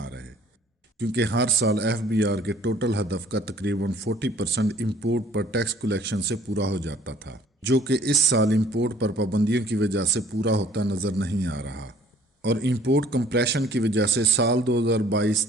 رہے، کیونکہ ہر سال FBR کے ٹوٹل ہدف کا تقریباً 40% امپورٹ پر ٹیکس کلیکشن سے پورا ہو جاتا تھا، جو کہ اس سال امپورٹ پر پابندیوں کی وجہ سے پورا ہوتا نظر نہیں آ رہا، اور امپورٹ کمپریشن کی وجہ سے سال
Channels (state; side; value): normal; both; correlation 0.56